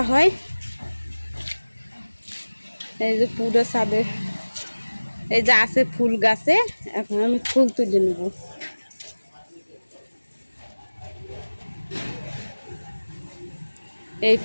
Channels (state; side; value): inverted; both; correlation -1.00